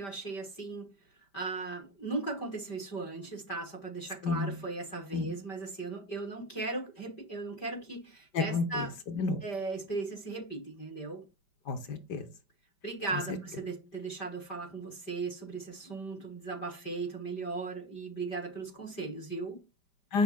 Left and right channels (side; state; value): right; late; 5.1 ms